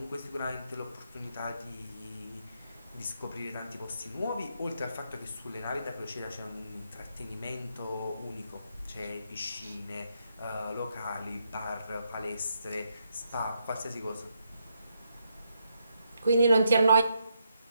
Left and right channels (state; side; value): inverted; both; correlation -0.79